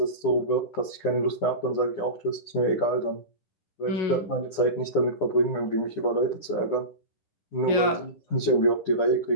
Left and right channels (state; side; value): late; right; 9.9 ms